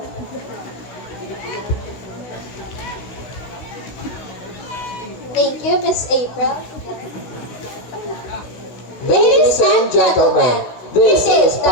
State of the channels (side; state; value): right; late; 16 ms